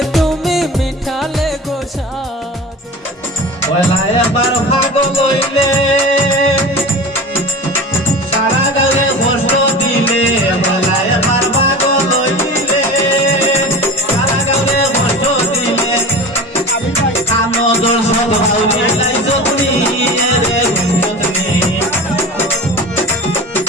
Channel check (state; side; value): normal; both; correlation 0.33